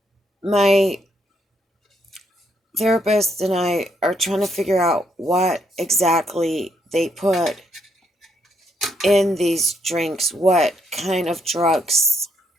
my therapist and I are trying to figure out what exactly they put in these drinks, what kind of drugs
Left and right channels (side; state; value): both; normal; correlation 0.75